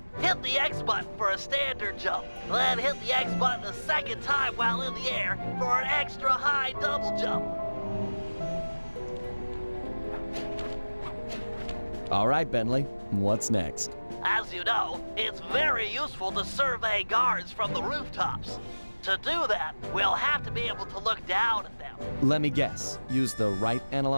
Hit the X button for a standard jump, then hit the X button a second time while in the air for an extra high double jump. All right, Bentley, what's next? As you know, it's very useful to survey guards from the rooftops. To do that, we'll have to be able to look down at them. Let me guess, use the right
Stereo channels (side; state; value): both; inverted; correlation -1.00